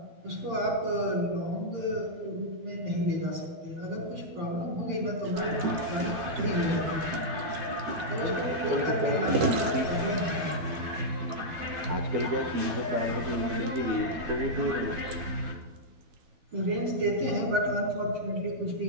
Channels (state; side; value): late; left; 12 ms